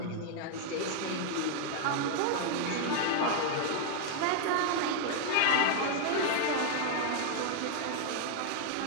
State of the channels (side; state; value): both; different; correlation 0.00